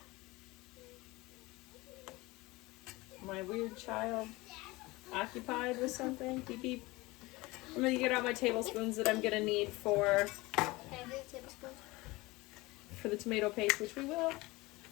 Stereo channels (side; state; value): right; quieter; 21.8 dB